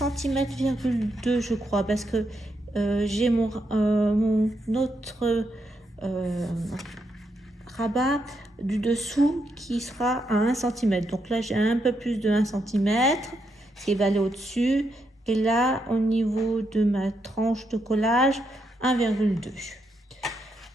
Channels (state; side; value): normal; both; correlation 0.80